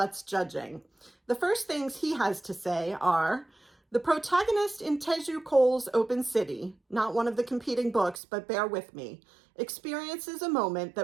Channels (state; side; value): drops out; left; at 8.2 s